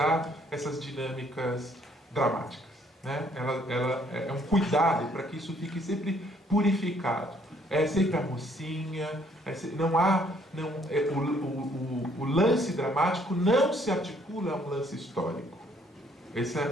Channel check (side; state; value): both; normal; correlation 0.64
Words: essas dinâmicas dramáticas, né? Ela é um cuidado para que isso fique sempre purificado. É sempre a mocinha, o lance dramático não se articula a um lance histórico.